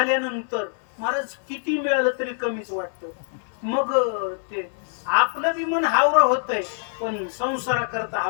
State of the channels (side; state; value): right; silent; 62 dB below the other